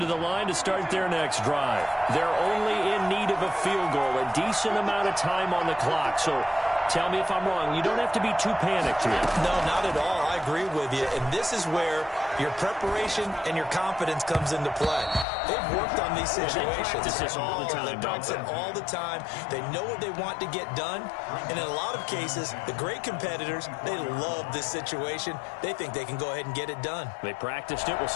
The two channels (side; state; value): right; drops out; at 15.2 s